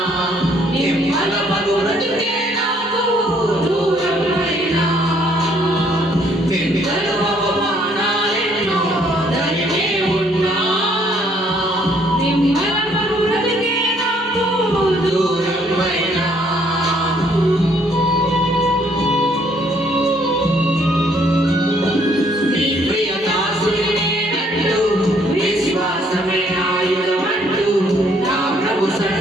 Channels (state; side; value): normal; both; correlation 0.65